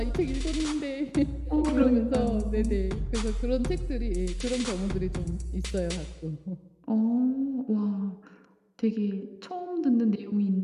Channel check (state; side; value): identical; both; correlation 1.00